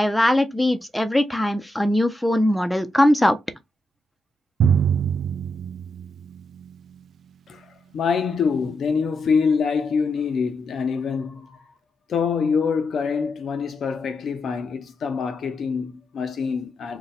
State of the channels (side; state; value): both; normal; correlation 0.85